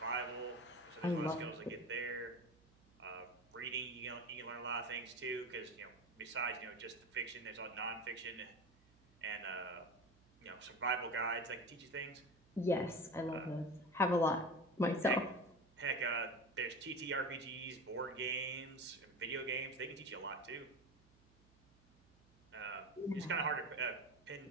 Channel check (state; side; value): noise; right; hum, 29 dB below the sound